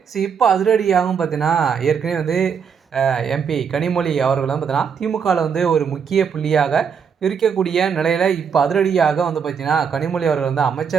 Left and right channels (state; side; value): quieter; left; 6.8 dB